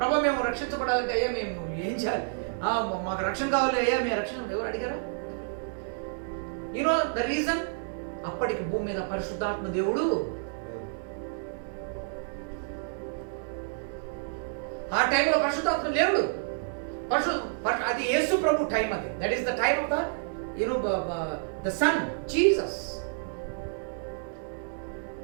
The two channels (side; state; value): left; silent; digital silence